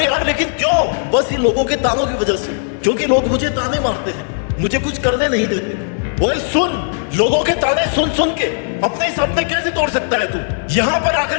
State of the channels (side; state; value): right; silent; digital silence